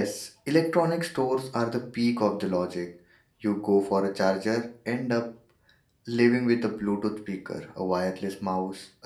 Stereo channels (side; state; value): both; identical; correlation 1.00